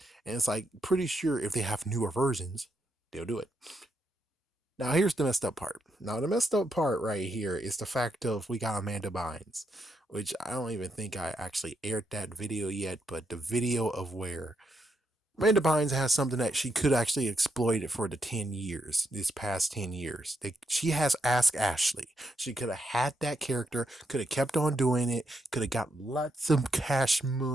And it's like pretty sure if they have newer versions, they'll do it. Now here's the messed up part. Now the messed up part right here is the fact of we got Amanda Bynes, which I don't even think I actually aired that video yet, but the video of where Amanda Bynes has something that she could actually exploit it for the 10 years, these past 10 years. She has Ask Ashley. She could have had that character, could have kept on doing it, could have got lots of cash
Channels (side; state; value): both; normal; correlation 0.80